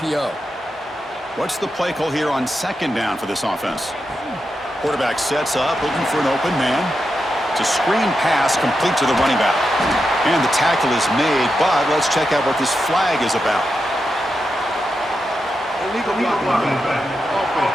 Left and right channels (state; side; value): normal; both; correlation 0.87